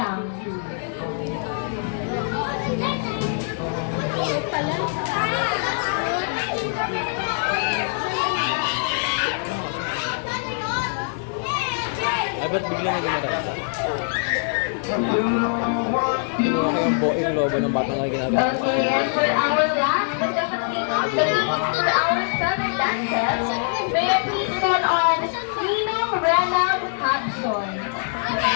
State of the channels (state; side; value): silent; right; 63 dB below the other